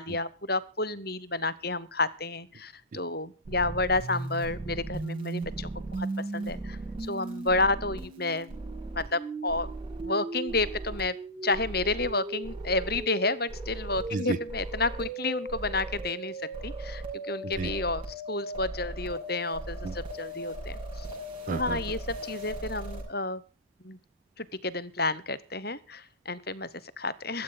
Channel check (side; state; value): both; normal; correlation -0.12